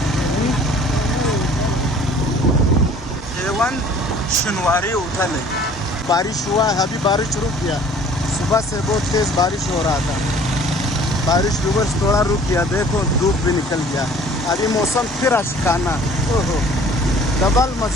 शनिवारी उठल है, बारिश हुआ है, अभी बारिश रुक गया। सुबह से बहुत तेज़ बारिश हो रहा था, बारिश रिवर्स थोड़ा रुक गया। देखो धूप भी निकल गया, अभी मौसम फिर अशकाना। ओहो, डबल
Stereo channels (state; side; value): normal; both; correlation 0.52